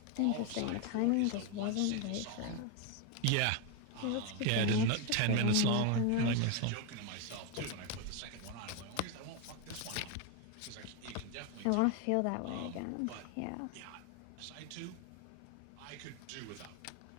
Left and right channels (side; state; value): both; different; correlation 0.01